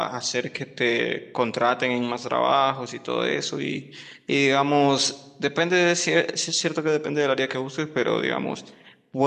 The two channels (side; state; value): both; identical; correlation 1.00